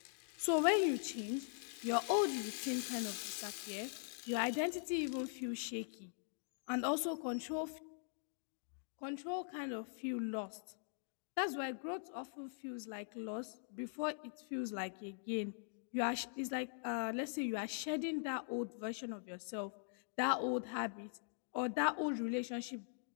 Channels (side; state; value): right; silent; digital silence